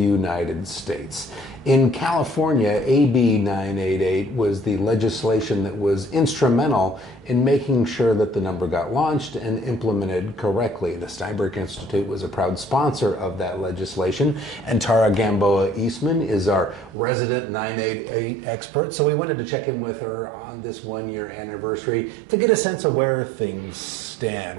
States. In California, AB 988 was the legislation that was instrumental in making sure that the number got launched and implemented correctly. The Steinberg Institute was a proud sponsor of that legislation, and Tara Gamboa Eastman is our resident 988 expert, so we wanted to check in with her on this one-year anniversary to get a sense of where things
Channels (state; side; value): drops out; left; at 16.9 s